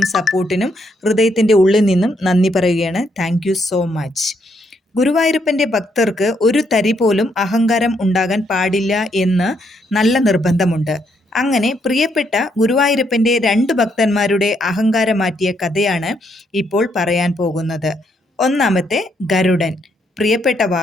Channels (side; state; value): both; normal; correlation 0.74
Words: സപ്പോർട്ടിനും ഹൃദയത്തിൻ്റെ ഉള്ളിൽ നിന്നും നന്ദി പറയുകയാണ്. Thank you so much. ഗുരുവായൂരപ്പൻ്റെ ഭക്തർക്ക് ഒരു തരി പോലും അഹങ്കാരം ഉണ്ടാകാൻ പാടില്ല എന്ന് നല്ല നിർബന്ധമുണ്ട്. അങ്ങനെ പ്രിയപ്പെട്ട ഗുരുവായൂരപ്പൻ്റെ 2 ഭക്തന്മാരുടെ അഹങ്കാരം മാറ്റിയ കഥയാണ് ഇപ്പോൾ പറയാൻ പോകുന്നത്. ഒന്നാമത്തെ ഗരുഡൻ, പ്രിയപ്പെട്ട